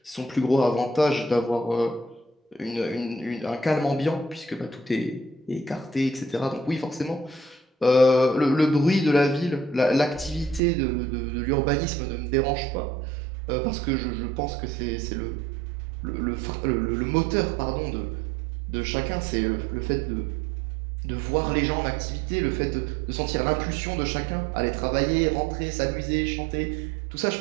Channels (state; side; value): drops out; left; at 10.6 s